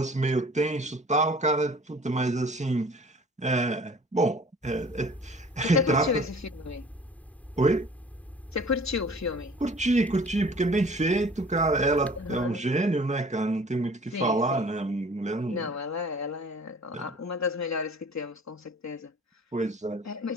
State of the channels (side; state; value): both; normal; correlation 0.49